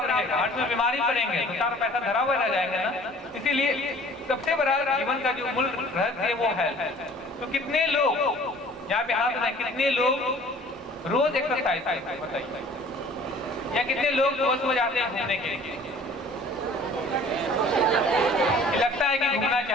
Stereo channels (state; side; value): normal; both; correlation 0.50